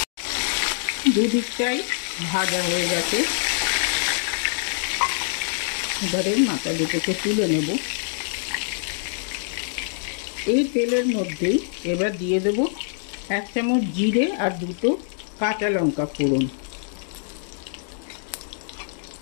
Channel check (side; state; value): right; silent; digital silence